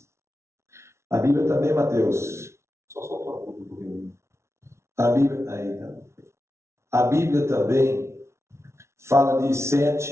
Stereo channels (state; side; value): late; left; 0.13 ms